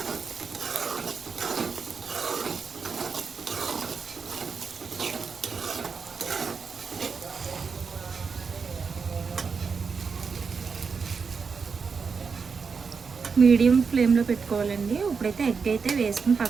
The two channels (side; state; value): left; quieter; 5.4 dB